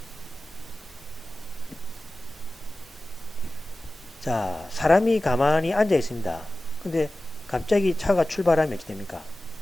자, 사람이 가만히 앉아 있습니다. 근데 갑자기 차가 출발하면 어떻게 됩니까?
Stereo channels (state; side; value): normal; both; correlation 0.96